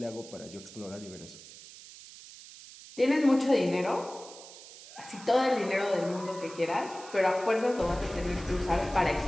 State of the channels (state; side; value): noise; right; hiss, 17 dB below the sound